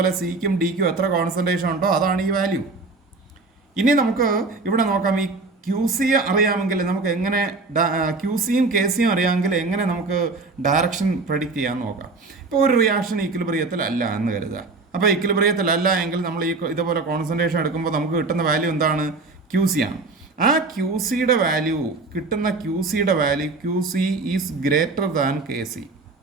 സിക്കും ഡിക്കും എത്ര കോൺസെൻട്രേഷൻ ഉണ്ടോ അതാണ് ഈ വാല്യൂ. ഇനി നമുക്ക് ഇവിടെ നോക്കാം. ഈ QC അറിയാമെങ്കിൽ നമുക്ക് എങ്ങനെ QCയും KCയും അറിയാമെങ്കിൽ എങ്ങനെ നമുക്ക് ഡയറക്ഷൻ പ്രഡിക്റ്റ് ചെയ്യാൻ നോക്കാം. ഇപ്പോൾ ഒരു റിയാക്ഷൻ ഈക്വിലിബ്രിയത്തിലല്ല എന്ന് കരുതുക. അപ്പോൾ ഈക്വിലിബ്രിയത്തിലല്ല എങ്കിൽ നമ്മൾ ഇതുപോലെ കോൺസെൻട്രേഷൻ എടുക്കുമ്പോൾ നമുക്ക് കിട്ടുന്ന വാല്യൂ എന്താണ്? QC ആണ്. ആ QCയുടെ value QC is greater than KC.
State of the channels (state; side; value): quieter; left; 3.7 dB